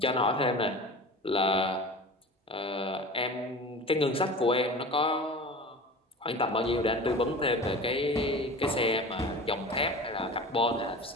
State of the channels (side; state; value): both; normal; correlation 0.35